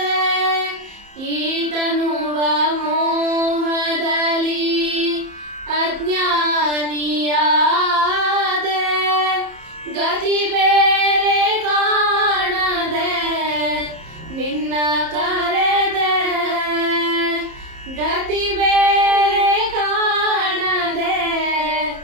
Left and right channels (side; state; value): left; late; 30 ms